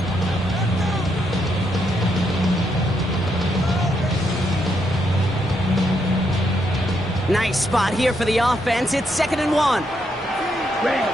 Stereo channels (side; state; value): both; normal; correlation 0.78